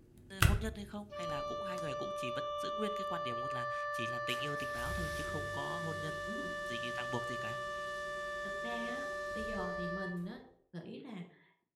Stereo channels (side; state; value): both; identical; correlation 1.00